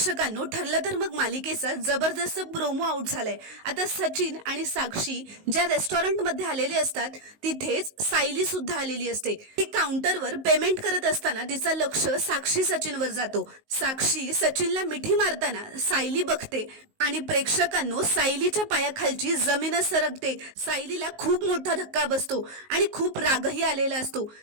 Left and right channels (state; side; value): late; left; 19 ms